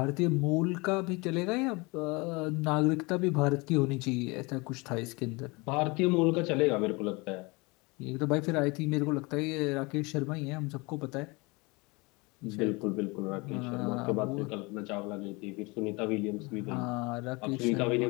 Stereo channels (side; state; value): right; quieter; 26.2 dB